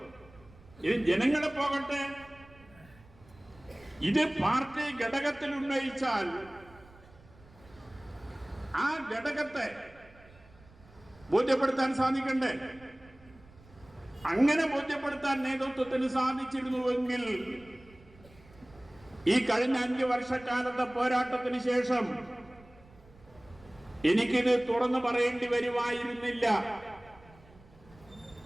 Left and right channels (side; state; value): right; noise; rumble, 24 dB below the sound